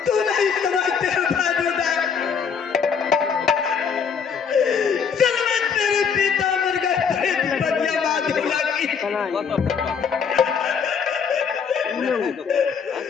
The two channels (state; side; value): quieter; right; 6.5 dB